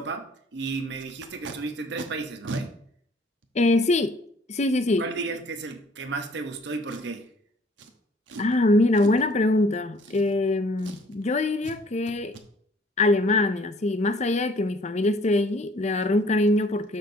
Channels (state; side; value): normal; both; correlation 0.57